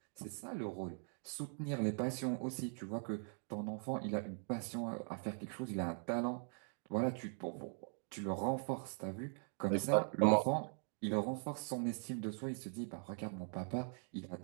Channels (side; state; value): left; silent; 50 dB below the other